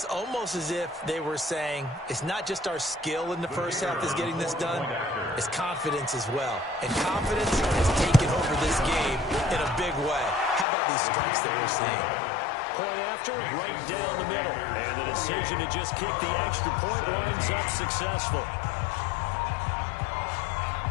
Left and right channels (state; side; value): drops out; right; at 10.7 s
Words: almost as if they were saying, it's not just our skill in the first half that's getting this done, it's confidence as well. And confidence has taken over this game in a big way. How about these strikes that we're seeing? Point after, right down the middle. And the decision to just kick the extra point winds up successful.